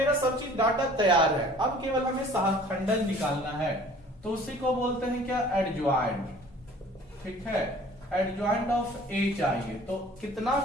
सब चीज डाटा तैयार है, अब केवल हमें सहखंडन निकालना है। तो उसी को बोलते हैं क्या, एडज्वाइंट। ठीक है, एडज्वाइंट ऑफ ए चाहिए, तो कितना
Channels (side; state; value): both; normal; correlation 0.50